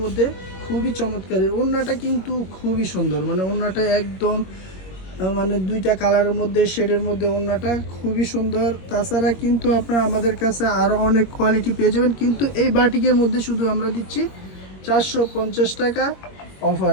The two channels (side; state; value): right; late; 21 ms